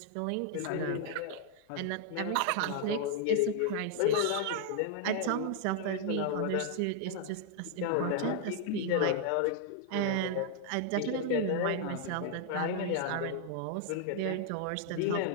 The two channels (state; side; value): different; both; correlation 0.00